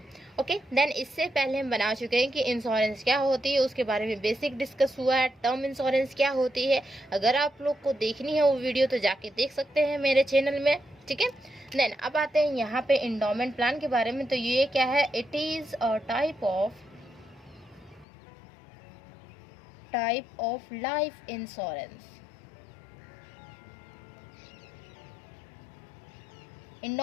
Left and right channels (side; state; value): right; drops out; at 18.1 s